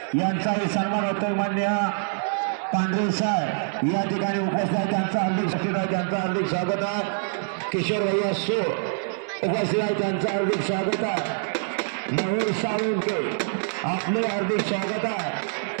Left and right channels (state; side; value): silent; left; 62 dB below the other